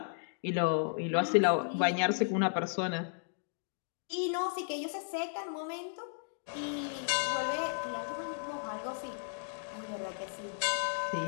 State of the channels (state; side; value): silent; right; digital silence